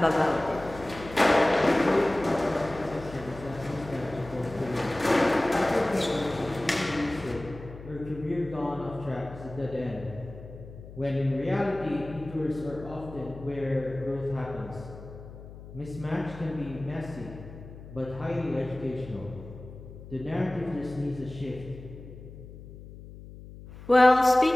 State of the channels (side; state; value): left; noise; hum, 15 dB below the sound